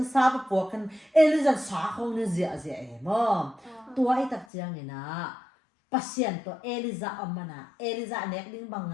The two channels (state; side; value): drops out; right; at 4.5 s